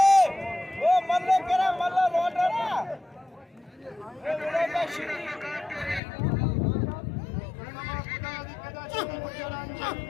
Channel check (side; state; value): right; drops out; at 6.0 s